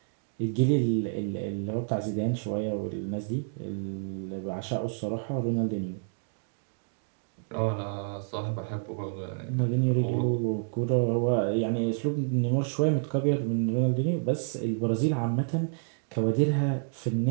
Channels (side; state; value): left; silent; digital silence